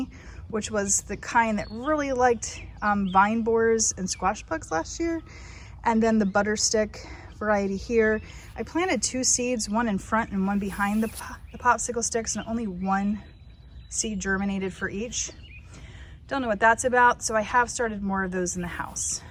which was the kind that really liked vine borers and squash bugs last year. And then the butter stick variety here. I planted 2 seeds, one in front and one behind the popsicle sticks, and only 1 seed germinated for each. Don't know what that's about, so I have started more of those in the house.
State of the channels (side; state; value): both; identical; correlation 1.00